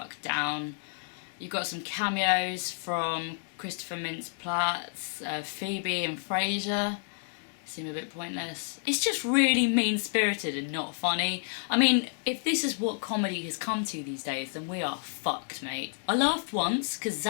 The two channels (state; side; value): silent; right; 58 dB below the other